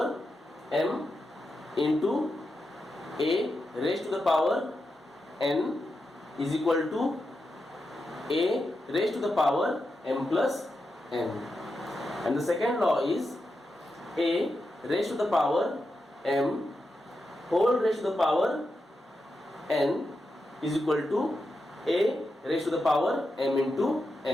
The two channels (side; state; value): both; normal; correlation 0.88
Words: m into a raised to the power n is equal to a raised to the power m plus n. And the second law is a raised to the power m whole raised to the power n is equal to a raised to the power m into